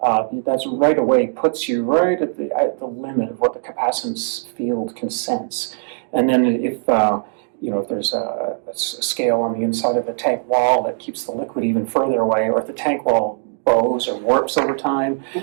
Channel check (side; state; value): left; silent; digital silence